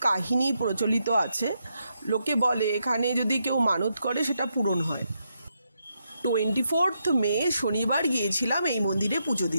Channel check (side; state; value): both; inverted; correlation -0.81